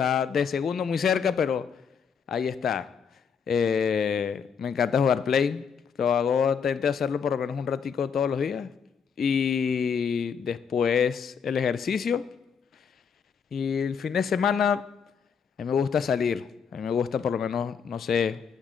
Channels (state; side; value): quieter; right; 6.6 dB